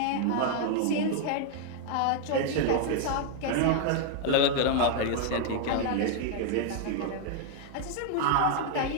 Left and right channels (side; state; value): both; different; correlation 0.00